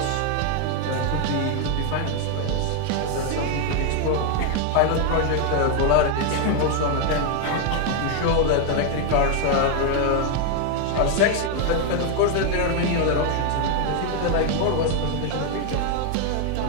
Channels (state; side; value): different; both; correlation 0.00